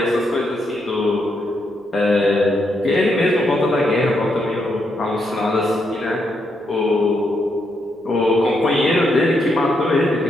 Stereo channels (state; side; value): normal; both; correlation 0.79